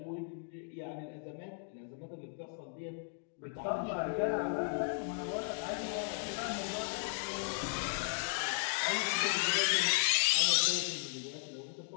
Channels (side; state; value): right; silent; 54 dB below the other